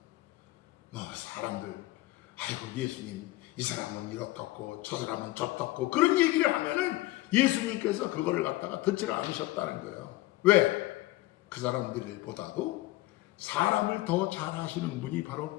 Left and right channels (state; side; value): quieter; right; 18.6 dB